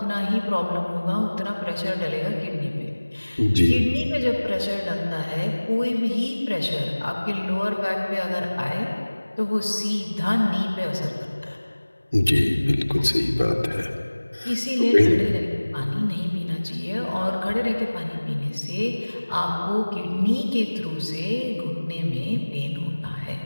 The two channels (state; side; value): inverted; both; correlation -1.00